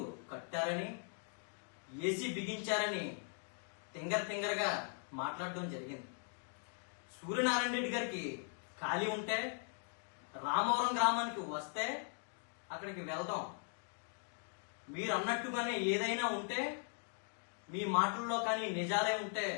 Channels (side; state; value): right; silent; 51 dB below the other